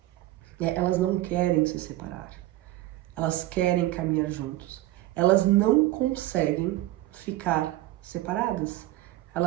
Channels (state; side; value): quieter; left; 16.0 dB